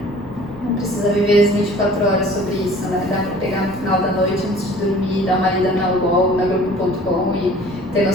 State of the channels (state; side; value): noise; left; rumble, 19 dB below the sound